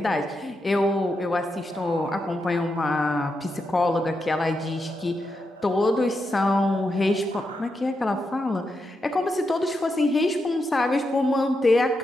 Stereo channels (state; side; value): normal; both; correlation 0.85